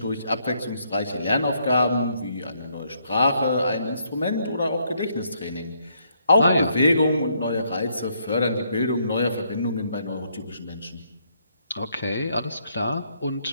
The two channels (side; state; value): both; inverted; correlation -0.72